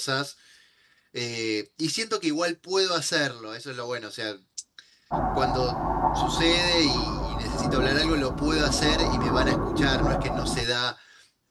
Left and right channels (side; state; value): both; identical; correlation 1.00